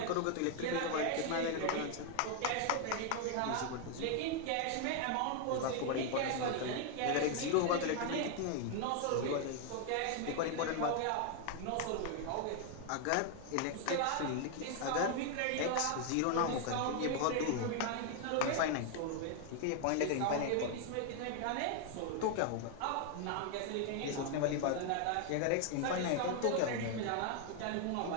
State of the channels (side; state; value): both; different; correlation 0.00